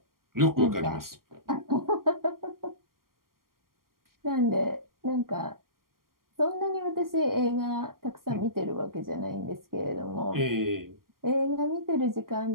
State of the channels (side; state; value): left; late; 0.92 ms